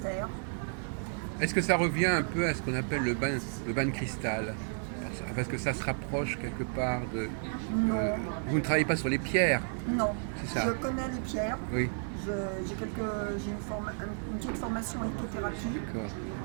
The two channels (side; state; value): left; silent; 56 dB below the other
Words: Est-ce que ça revient un peu à ce qu'on appelle le bain de cristal? Parce que ça se rapproche quelque part de... Non. Vous ne travaillez pas sur les pierres? Non, C'est ça. je connais les pierres. Oui, J'ai une petite formation en lithothérapie, d'accord.